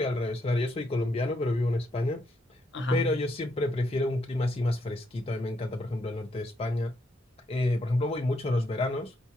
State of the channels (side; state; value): both; normal; correlation 0.77